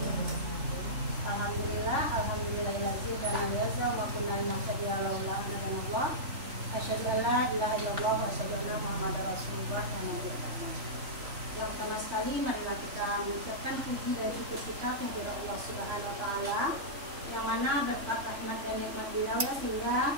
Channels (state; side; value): late; left; 3.4 ms